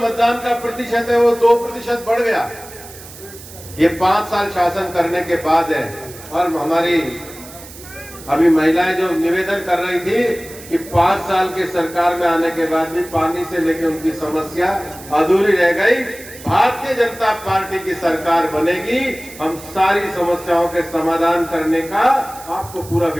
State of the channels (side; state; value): right; noise; hiss, 17 dB below the sound